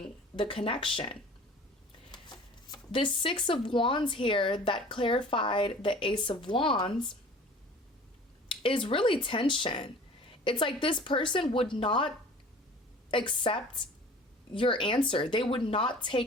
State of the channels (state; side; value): normal; both; correlation 0.45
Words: the connection. This Six of Wands here that clarified the Ace of Wands is really tension. It's like this person would not accept your answer. They would not